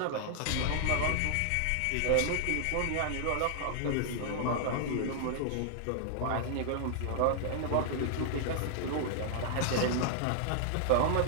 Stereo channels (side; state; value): both; different; correlation 0.00